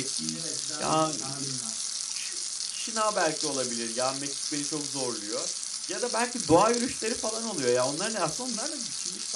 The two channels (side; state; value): both; identical; correlation 1.00